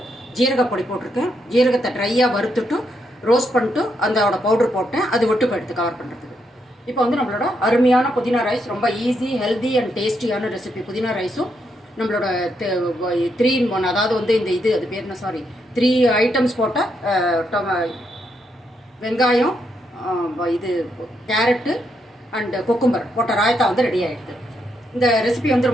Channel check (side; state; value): both; normal; correlation 0.79